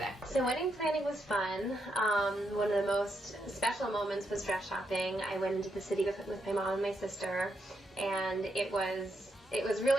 So wedding planning was fun. One of the most special moments was dress shopping. I went into the city with my mom and my sister, and it was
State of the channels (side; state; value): both; normal; correlation 0.81